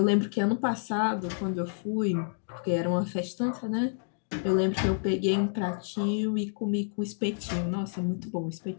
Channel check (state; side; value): silent; right; digital silence